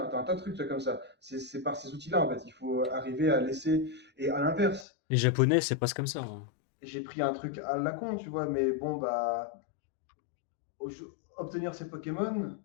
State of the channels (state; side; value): drops out; right; at 4.9 s